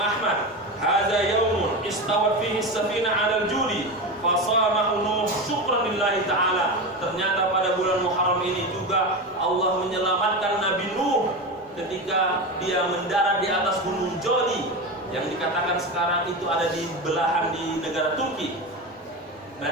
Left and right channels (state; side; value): normal; both; correlation 0.21